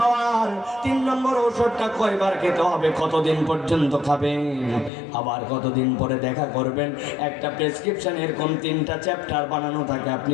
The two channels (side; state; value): right; drops out; at 4.9 s